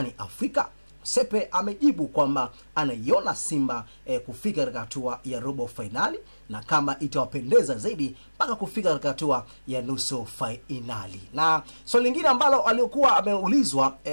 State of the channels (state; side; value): inverted; both; correlation -1.00